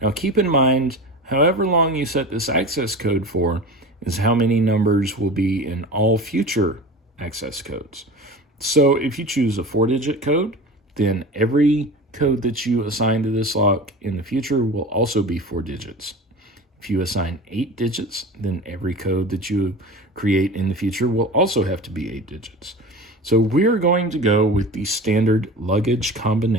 keep in mind, however long you set this access code for is how many numbers will be in all future access codes. So if you choose a 4-digit code, then every code that you assign to this lock in the future will also be 4 digits. If you assign 8 digits, then every code that you create in the future will also have to be 8 digits. So we're going to go with the standard luggage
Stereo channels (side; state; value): both; normal; correlation 0.34